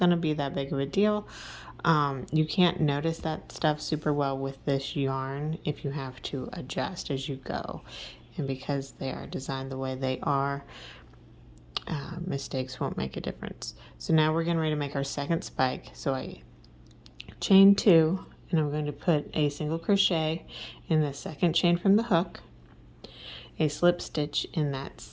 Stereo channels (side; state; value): both; identical; correlation 1.00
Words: to be that big of a deal. You can't notice that stuff super well with this yarn if you have to adjust as you go. And because they are designed the way they are, mistakes won't make a difference. So now we're getting ready to make our second spike. So I chain 2, and I'm going to put a single crochet in the second chain from the hook, a slip stitch in that